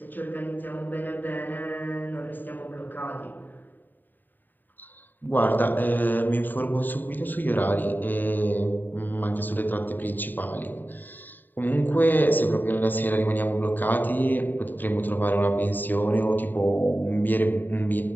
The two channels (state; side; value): late; right; 0.090 ms